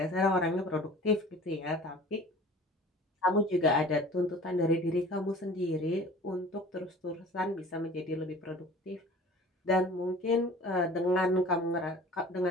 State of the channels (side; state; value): both; normal; correlation 0.44